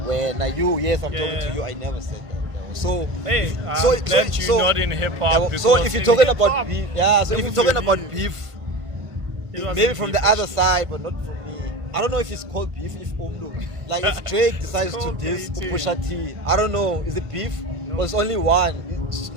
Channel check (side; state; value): left; late; 1.5 ms